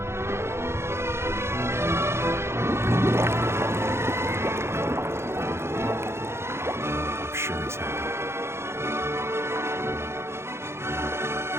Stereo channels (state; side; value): late; left; 0.12 ms